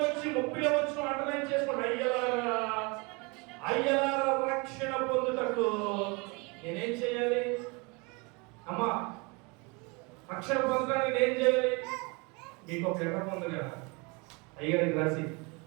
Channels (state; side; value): quieter; left; 28.5 dB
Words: వచ్చి 30వ వచనం అండర్లైన్ చేసుకోండి. అయ్యలారా రక్షణ పొందుటకు నేనేం చేయాలి? అమ్మా, రక్షణ పొందడానికి నేను చేయాలి? మీకు ఒక లెటర్ పొంది కదా అయ్యగారికి రాసి,